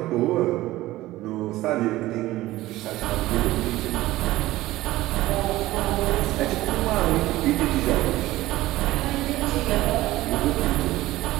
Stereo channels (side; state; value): left; quieter; 16.9 dB